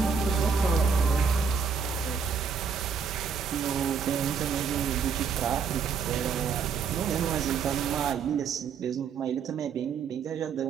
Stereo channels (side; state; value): left; quieter; 6.3 dB